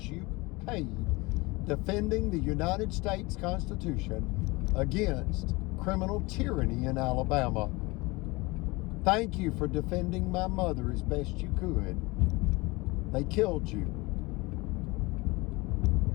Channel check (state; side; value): quieter; right; 23.8 dB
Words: you paid defending the United States Constitution against criminal tyranny in Alabama. Thank you for defending my mother as best you could. They killed you.